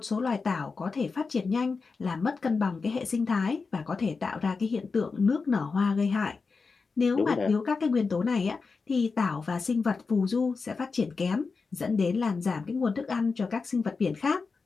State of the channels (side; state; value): right; quieter; 4.6 dB